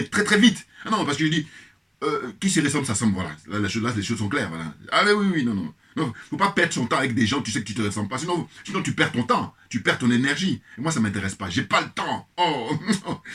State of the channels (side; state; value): both; identical; correlation 1.00